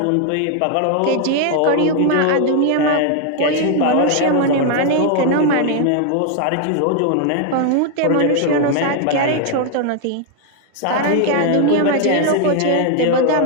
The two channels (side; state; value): both; different; correlation 0.00